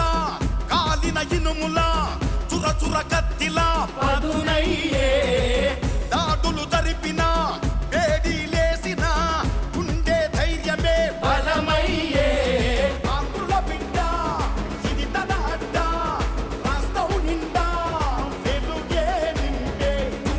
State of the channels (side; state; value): both; identical; correlation 1.00